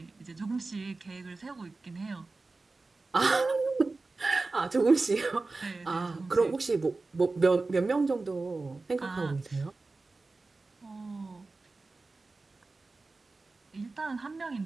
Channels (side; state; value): left; quieter; 3.6 dB